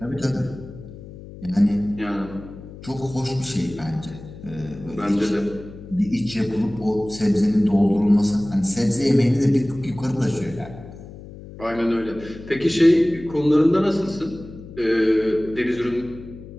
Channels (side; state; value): left; noise; hum, 15 dB below the sound